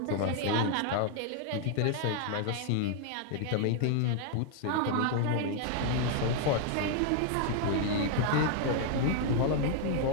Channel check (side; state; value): both; different; correlation 0.00